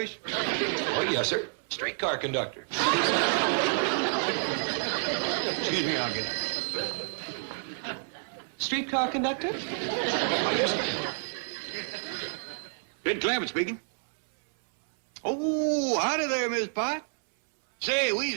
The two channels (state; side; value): silent; left; 59 dB below the other